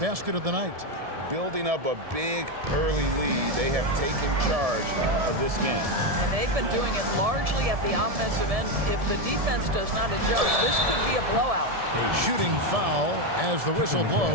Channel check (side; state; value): left; late; 1.7 ms